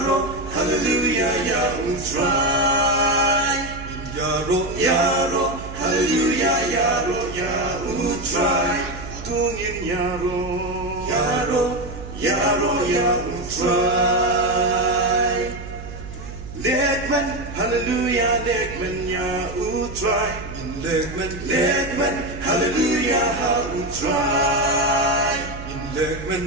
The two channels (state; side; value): noise; right; hum, 11 dB below the sound